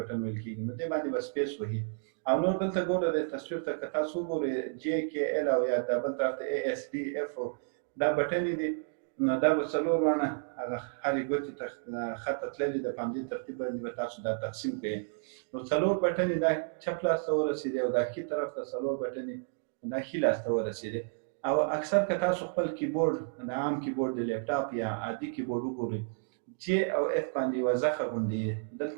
ویل کېږي، نو دې باندې به سپیس وهي او نور دلته ګوره د تصویر ته که تاسو وګورئ جې کې ایل او یا دا بل طرف ته ای اس ډي اف دا بټنې دي، نو دا به څلور وانه هغه هرې ګوتې ته خطه تللې ده، په همدې ترتیب باندې به تاسو دا تقسیم کړئ. نو څلور بټنې دا چپ لاس ته ورسېدې او دا ښي طرف ته څلور بټنې دا ښي لاس ته ورسېدې. او اکثر که تاسو خپل کیبورډ د عام کیبورډ د لیپټاپ یا عادي کیبورډ وګورئ جې او اف باندې یوه زخه غوندې دلته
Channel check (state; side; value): silent; left; digital silence